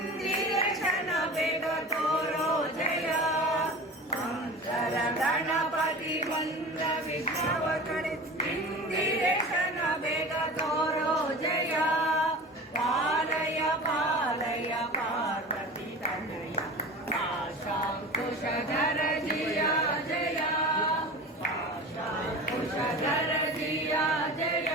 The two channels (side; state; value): both; normal; correlation 0.34